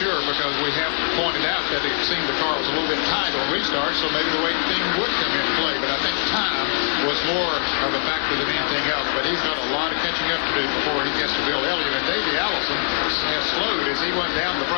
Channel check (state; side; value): silent; right; digital silence